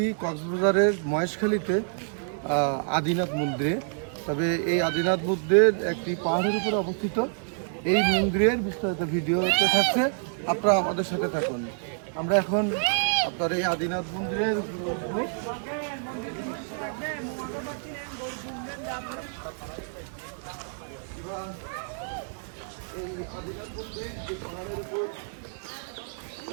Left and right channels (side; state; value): left; silent; digital silence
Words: কক্সবাজারের মহেশখালীতে আদিনাথ মন্দিরে। তবে এই আদিনাথ মন্দির একটি পাহাড়ের উপরে অবস্থিত। এই মন্দিরের বিস্তারিত ভিডিওতে থাকছে, আপনারা আমাদের সাথে থাকুন। আমরা এখন আপনার এই আদিনাথ মন্দিরের এই আদিনাথ মন্দির যে পাহাড়ের উপর